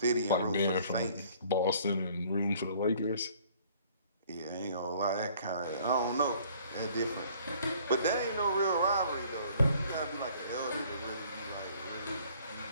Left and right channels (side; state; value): both; inverted; correlation -0.56